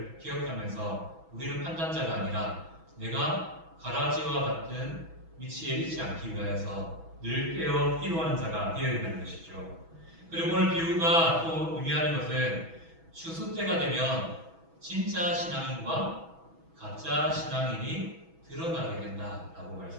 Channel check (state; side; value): late; left; 6.1 ms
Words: 기억하면서 우리는 판단자가 아니라 내가 가라지와 같은 위치에 있지 않기 위하여서 늘 깨어 기도하는 자가 되어야 된다는 것이죠. 그리고 오늘 비유가 또 의미하는 것은 추수 때가 되면 진짜 신앙인과 가짜 신앙인이 드러나게 된다라고